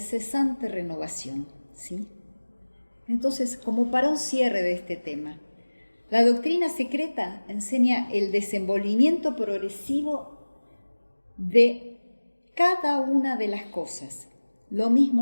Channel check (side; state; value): both; inverted; correlation -1.00